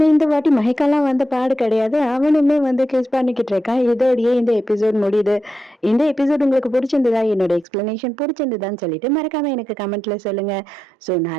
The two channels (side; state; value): left; drops out; at 7.7 s